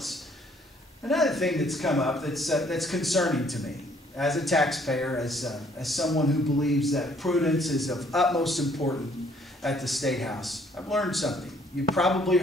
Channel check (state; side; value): normal; both; correlation 0.62